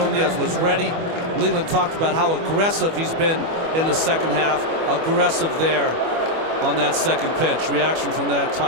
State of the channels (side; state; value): left; late; 25 ms